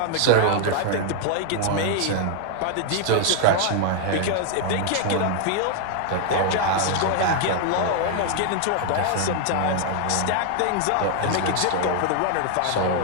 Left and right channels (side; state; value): both; different; correlation 0.00